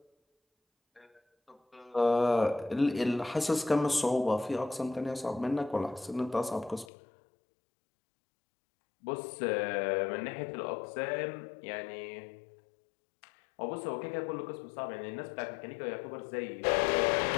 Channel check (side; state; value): right; drops out; at 6.9 s